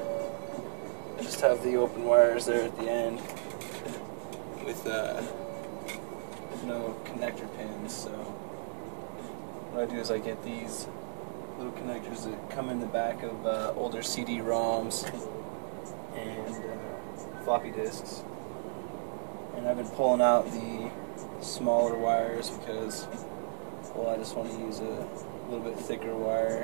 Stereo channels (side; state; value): left; silent; digital silence